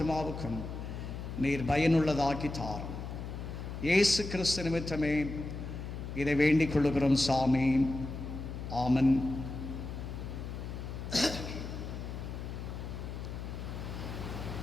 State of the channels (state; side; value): noise; left; hum, 7 dB below the sound